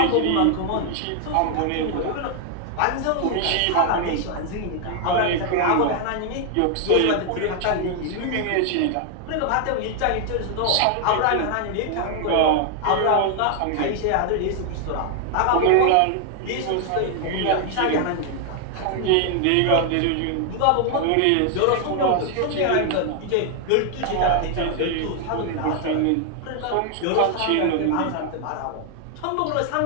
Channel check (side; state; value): both; different; correlation 0.00